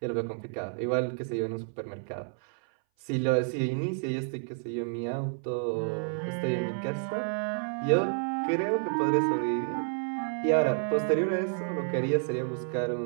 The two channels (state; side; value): silent; left; 58 dB below the other